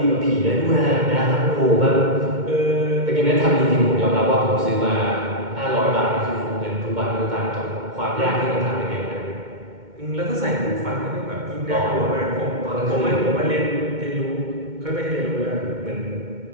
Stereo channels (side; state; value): left; late; 2.2 ms